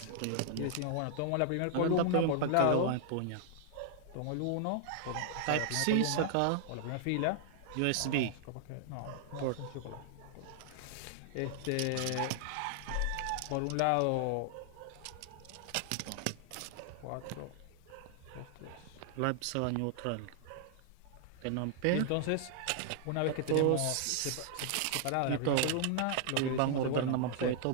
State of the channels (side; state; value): both; different; correlation 0.00